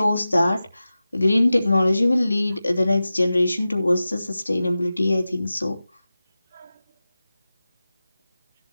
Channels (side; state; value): both; inverted; correlation -0.95